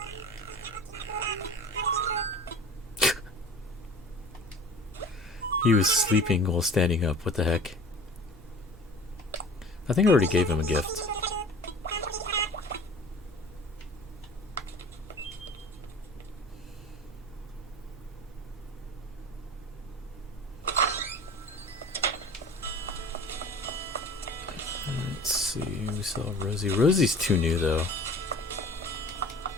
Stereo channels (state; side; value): normal; both; correlation 0.43